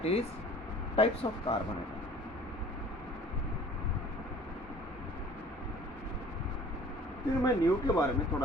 is types of carbon atom. फिर मैं नियो के बारे में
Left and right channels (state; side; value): normal; both; correlation 0.49